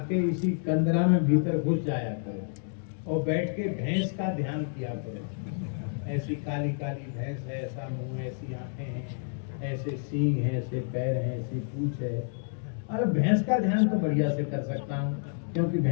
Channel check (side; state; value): right; silent; digital silence